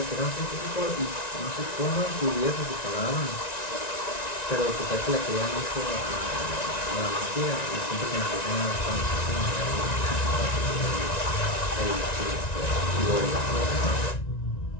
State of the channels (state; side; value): late; right; 1.9 ms